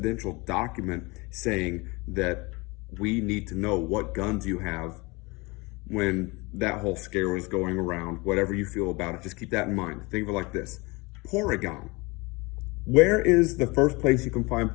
document saying that we need to know what guns you have. When that whole scare was going around, whatever you feel about it, just keep that in mind. Think of it like this. Porygon. Where is the first place you can find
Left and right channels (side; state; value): right; quieter; 25.8 dB